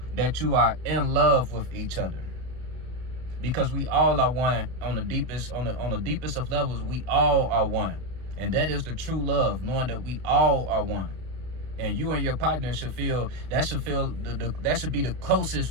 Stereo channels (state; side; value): late; left; 32 ms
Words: that you are in love with each other. Because we all are one on the deepest of levels. We all are one, and that is the true love, knowing that we all are one. And you and your partner should feel that should be the